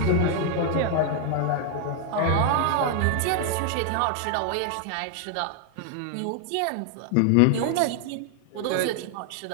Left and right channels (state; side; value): different; both; correlation 0.00